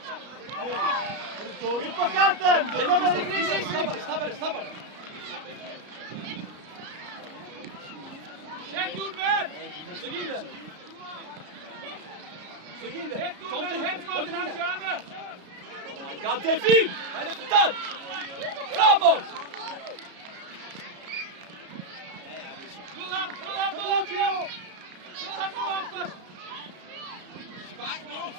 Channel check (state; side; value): late; left; 33 ms